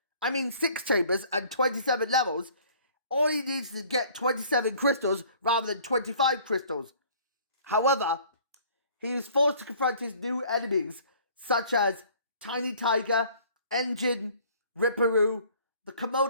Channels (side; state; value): both; inverted; correlation -0.54